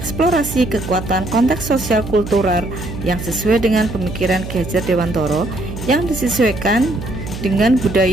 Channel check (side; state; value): right; noise; hum, 9 dB below the sound